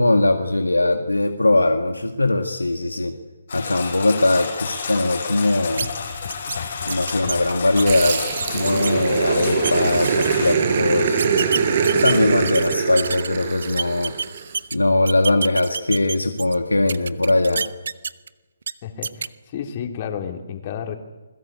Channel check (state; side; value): inverted; both; correlation -0.87